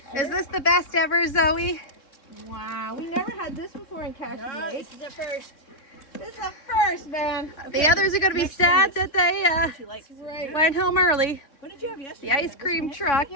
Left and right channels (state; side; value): late; right; 3.7 ms